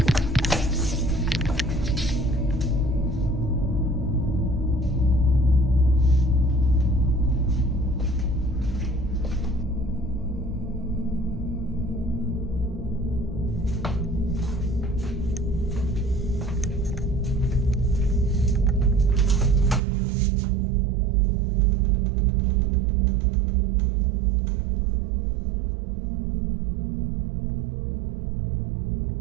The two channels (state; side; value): drops out; left; at 19.8 s